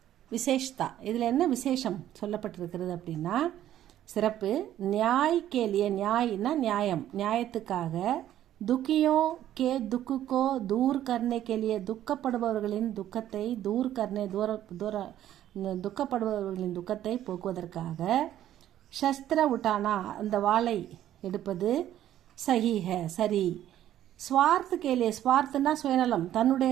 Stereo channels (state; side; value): quieter; left; 12.1 dB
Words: விசேஷ்தா, இதில் என்ன விசேஷம் சொல்லப்பட்டிருக்கிறது அப்படின்னா, சிறப்பு. நியாய் கேலிய, நியாய்னா நியாயம், நியாயத்துக்காக, துக்கியோ கே துக்குக்கோ தூர் கர்னே கேலிய, துக்கப்படுபவர்களின் துக்கத்தை, தூர் கர்னே துக்கப்படுபவர்களின் துக்கத்தை போக்குவதற்காக, சஸ்திர உட்டானா அந்த வாளை எடுப்பது, சஹீஹ சரி. ஸ்வார்த்த கேலிய, ஸ்வார்த்தனா சுயநலம்,